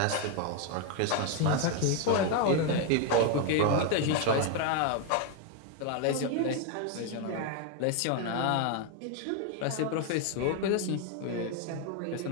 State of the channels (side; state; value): both; different; correlation 0.01